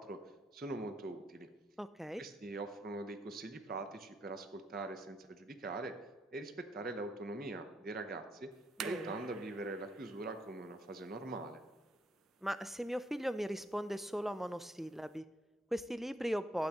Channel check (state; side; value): normal; both; correlation 0.74